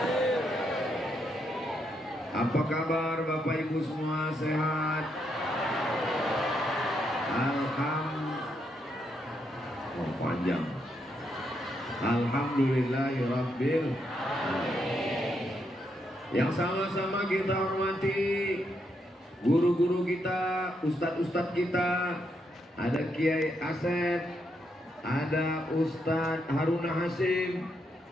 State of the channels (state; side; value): normal; both; correlation 0.79